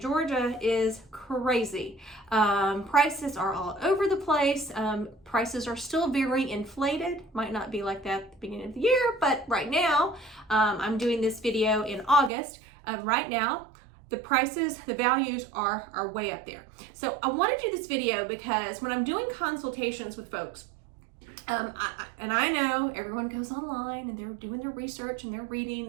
is crazy. Prices are all over the place. Prices are still very inflated. Might not be like that at the beginning of the year, but right now, I'm doing this video in August. Right now, the prices, the values are way up there. So I want to do this video because when I'm doing consultations with folks, I know everyone goes online and they're doing their research and they're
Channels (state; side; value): drops out; left; at 12.3 s